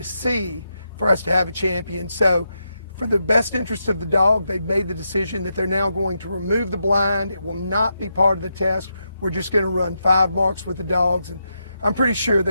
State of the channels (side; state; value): both; inverted; correlation -0.84